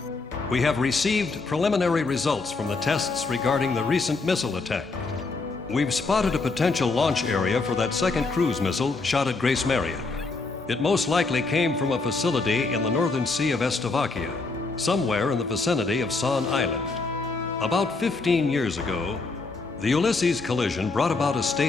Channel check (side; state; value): right; quieter; 3.8 dB